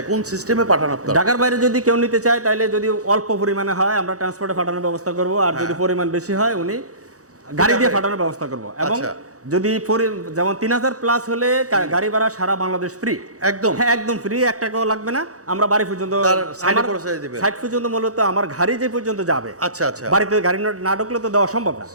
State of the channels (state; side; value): late; left; 0.66 ms